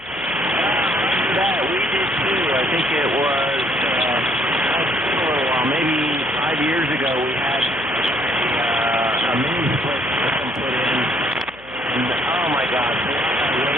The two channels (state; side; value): noise; left; hum, 26 dB below the sound